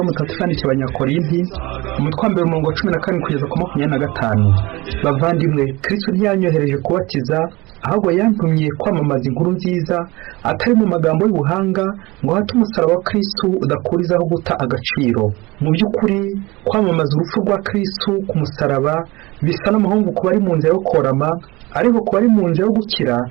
Mutagatifu yandikiye Abanyakorinti, umutwe wa 14 kugeza ku 25. Bavandimwe, Kristo ntiyanyohereje kubatiza, ahubwo yantumye kwamamaza inkuru nziza, atari mu magambo y'ubuhanga, ngo hate umusaraba wa Kristo udakurizaho guta agaciro. Mu by'ukuri kwamamaza urupfu rwa Kristo ku musaraba bisa n'amahungu ku bari mu nzira yo korama, ariko ku bari mu nzira yo gukira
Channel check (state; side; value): quieter; left; 22.1 dB